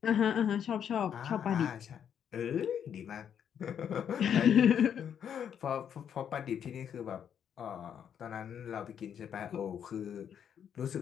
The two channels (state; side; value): quieter; right; 8.6 dB